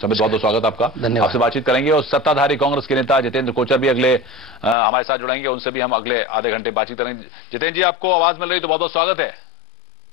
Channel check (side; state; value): right; drops out; at 4.8 s